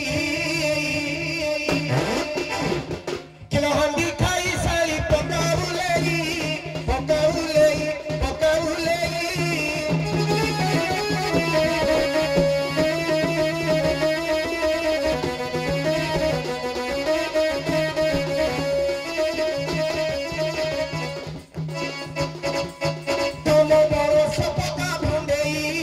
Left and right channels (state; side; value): identical; both; correlation 1.00